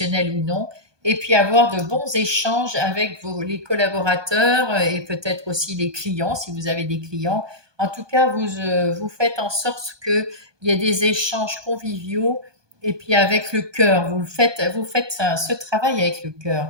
ou non, et puis avoir de bons échanges avec les collaborateurs et peut-être aussi les clients, si vous avez des clients. En tout cas, vous faites en sorte qu'il y ait des échanges conviviaux et puis avec le cœur. Vous faites ce travail avec le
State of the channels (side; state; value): left; late; 1.2 ms